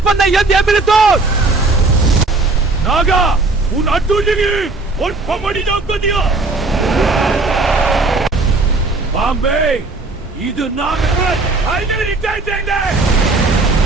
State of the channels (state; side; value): quieter; left; 3.4 dB